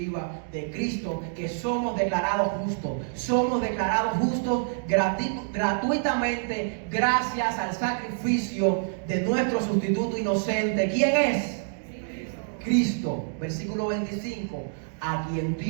de Cristo que somos declarados justos. Somos declarados justos gratuitamente gracias al sacrificio de nuestro sustituto inocente. ¿Quién es? Cristo, versículo 25, a quien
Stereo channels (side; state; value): left; silent; digital silence